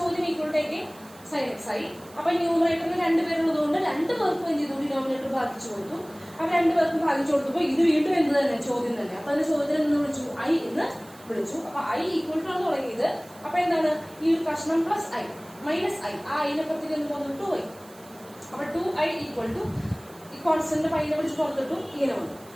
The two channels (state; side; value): noise; right; hiss, 23 dB below the sound